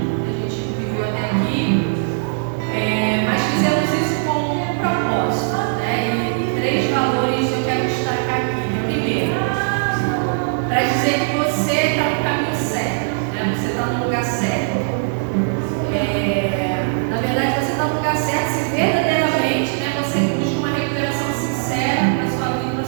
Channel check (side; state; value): left; silent; digital silence